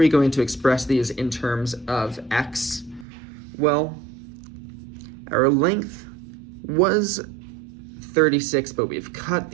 going to express these in terms of x? Well, our length was 36, but we've cut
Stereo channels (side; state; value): left; drops out; at 3.1 s